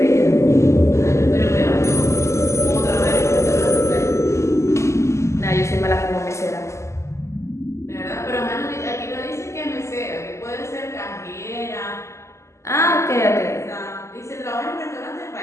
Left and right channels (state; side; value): late; right; 0.13 ms